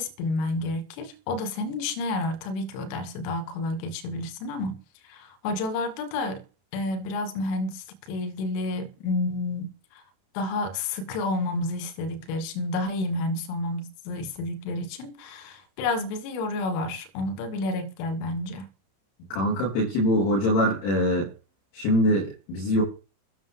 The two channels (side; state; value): right; late; 32 ms